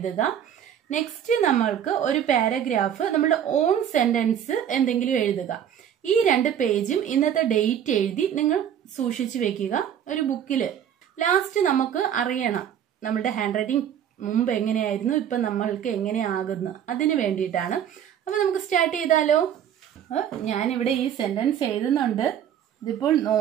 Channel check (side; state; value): left; quieter; 9.4 dB